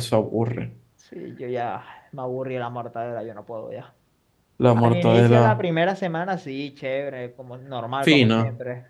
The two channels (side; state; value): both; identical; correlation 1.00